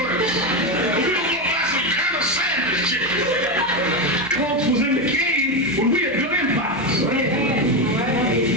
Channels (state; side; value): normal; both; correlation 0.12